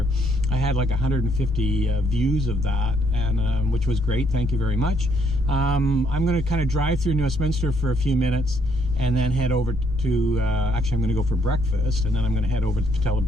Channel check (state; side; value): normal; both; correlation 0.71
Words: I had like 150 views of that, and which was great. Thank you very much. I'm going to kind of drive through New Westminster for a few minutes and then head over to, actually I'm going to go for breakfast, and then I'm going to head over to Patella